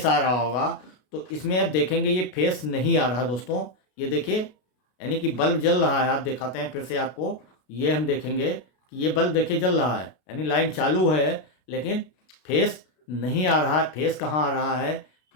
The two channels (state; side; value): late; right; 33 ms